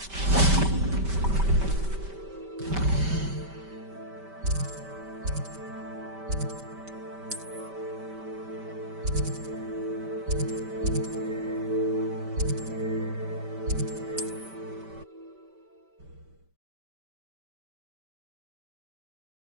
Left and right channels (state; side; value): late; left; 5.1 ms